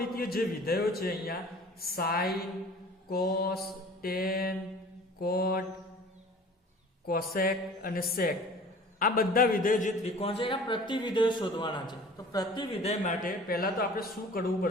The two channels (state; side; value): normal; both; correlation 0.45